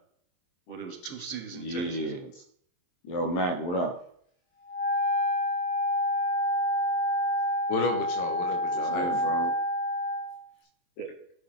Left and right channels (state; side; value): late; right; 23 ms